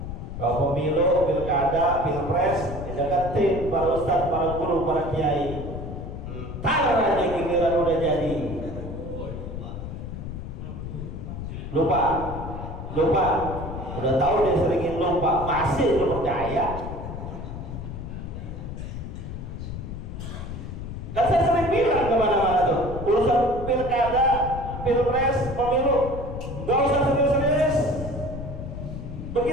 Kalau pemilu, pilkada, pilpres, dideketin para ustadz, para guru, para kiai. Entar aja giliran udah jadi. Lupa. Udah tahu dia seringin lupa, masih lu percaya? Dan saya sering bilang kemana-mana tuh, urusan pilkada, pilpres, pemilu, nggak usah serius-serius.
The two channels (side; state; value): left; noise; rumble, 8 dB below the sound